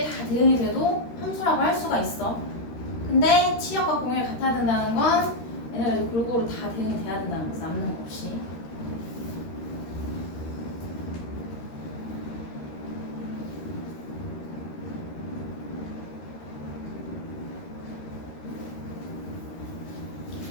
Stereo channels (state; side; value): late; right; 13 ms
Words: 다 대응이 돼도 함수라고 할 수가 있어. 근데 치역과 공역이 같아야 된다는 건 얘네가 골고루 다 대응이 돼야 된다는 거지. 남는 거 없이.